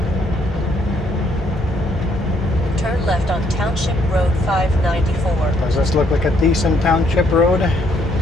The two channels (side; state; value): both; normal; correlation 0.70